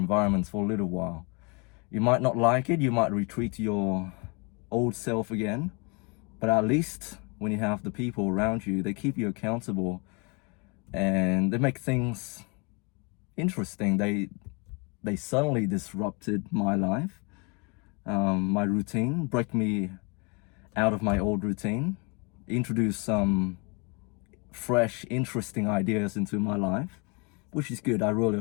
for a little while. You might not like it, you might retreat to your old self again, but at least when you have the people around you, they keep you accountable and they make things interesting. They suddenly disrupted my life, my routine, break me out of my old routine, introduce some fresh, interesting ideas into my life, which is good. I really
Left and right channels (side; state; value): right; quieter; 31.3 dB